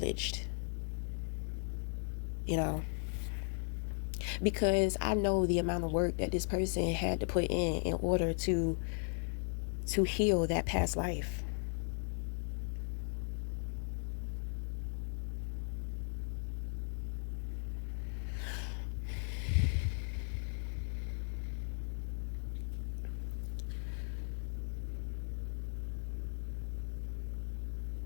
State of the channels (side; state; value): right; silent; 53 dB below the other